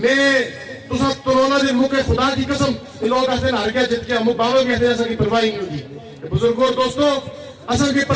تساں تنونا دے موقع خدا کی قسم یہ لوگ آتے ہیں ہر گیا جت گیا مو بابا بھی آتے ہیں ایسا کی پرواہی نہیں ہوگی بزرگوں دوستو اصل کی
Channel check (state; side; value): identical; both; correlation 1.00